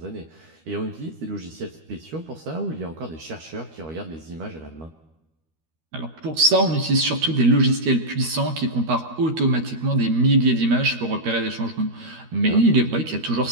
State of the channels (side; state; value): left; late; 13 ms